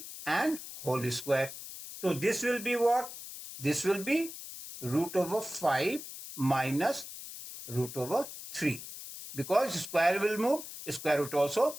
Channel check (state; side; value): noise; left; hiss, 11 dB below the sound